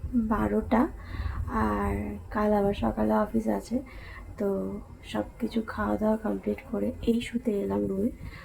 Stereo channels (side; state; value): both; identical; correlation 1.00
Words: 12টা। আর কাল আবার সকালে অফিস আছে, তো সব কিছু খাওয়া দাওয়া কমপ্লিট করে এই শুতে এলাম রুমে।